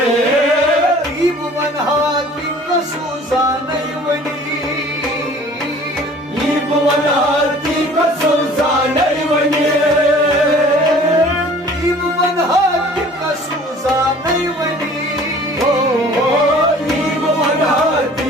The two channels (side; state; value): both; normal; correlation 0.49